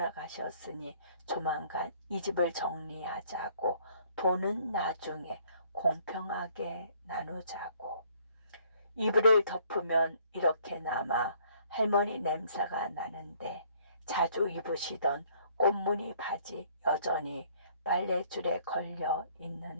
조만간 이 집을 정리하자고, 돈은 나중에 공평하게 나누자고. 이불을 덮으면 이렇게 남아 할머니 냄새가 나는데 자주 입으시던 꽃무늬 바지 여전히 빨랫줄에 걸려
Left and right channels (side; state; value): both; inverted; correlation -0.61